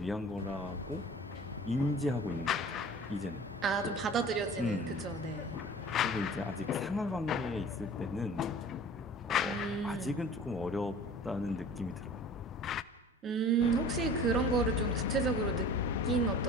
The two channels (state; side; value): normal; both; correlation 0.43